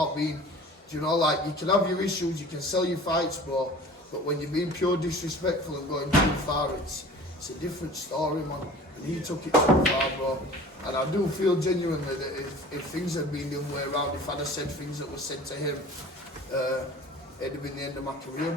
being, you know, like, you can have your issues, you can sell your fights, bro, but when you're being pure disrespectful and going too far, it's a different story, man. And he took it too far, bro. And I do feel genuinely that if things had been the other way around, if I'd have said things that were said to him, it'd have been the end of my career,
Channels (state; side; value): normal; both; correlation 0.43